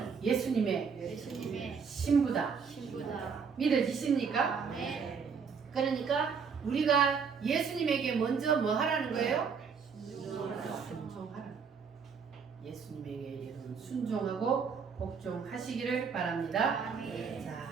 예수님의 신부다. 신부다. 믿어지십니까? 아멘. 그러니까 우리가 예수님에게 먼저 뭐 하라는 거예요? 순종하라. 예수님에게 여러분 순종하고 복종하시기를 바랍니다. 아멘.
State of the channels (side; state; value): left; quieter; 6.0 dB